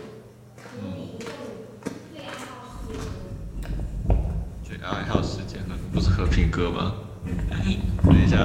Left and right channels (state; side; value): identical; both; correlation 1.00